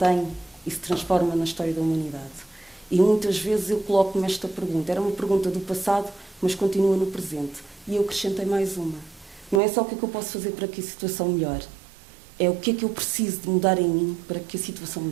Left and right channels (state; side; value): drops out; left; at 9.6 s